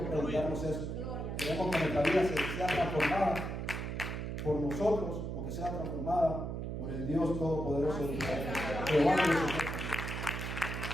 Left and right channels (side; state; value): right; noise; hum, 4 dB below the sound